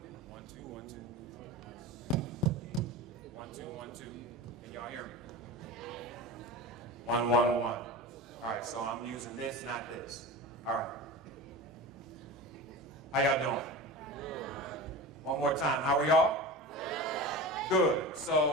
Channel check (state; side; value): normal; both; correlation 0.30